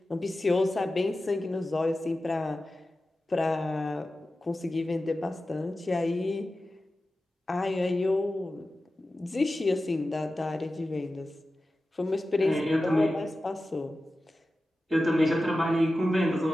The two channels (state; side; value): normal; both; correlation 0.94